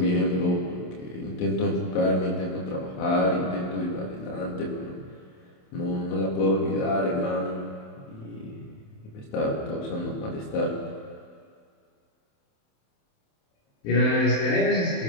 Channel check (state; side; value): late; right; 27 ms